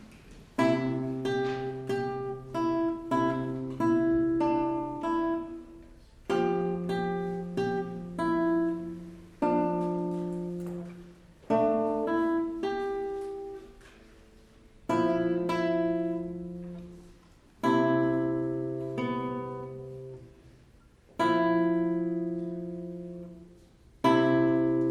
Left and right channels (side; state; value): both; identical; correlation 1.00